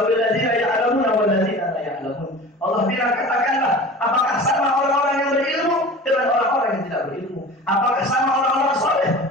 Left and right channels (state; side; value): normal; both; correlation 0.38